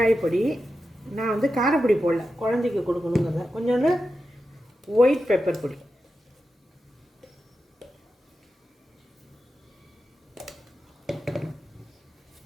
பொடி, நான் வந்து காரப்பொடி போடல, குழந்தைக்கு கொடுக்கணுங்கிறத. கொஞ்சோண்டு ஒயிட் பெப்பர் பொடி,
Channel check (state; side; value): normal; both; correlation 0.90